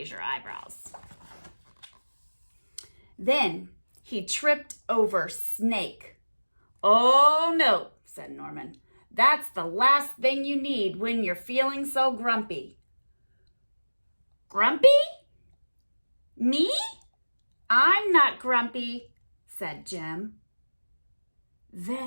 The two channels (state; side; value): inverted; both; correlation -1.00